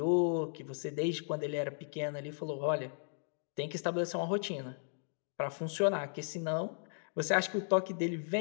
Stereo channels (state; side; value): silent; right; digital silence